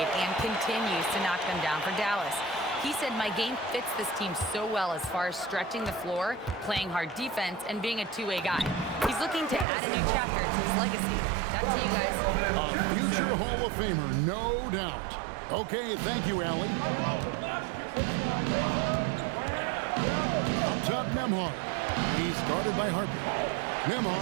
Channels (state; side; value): drops out; left; at 9.7 s